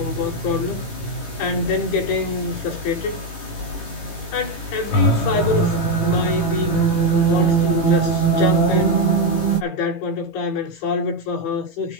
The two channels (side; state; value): right; late; 18 ms